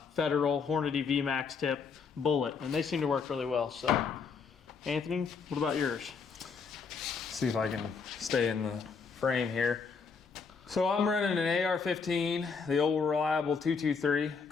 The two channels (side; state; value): right; quieter; 5.4 dB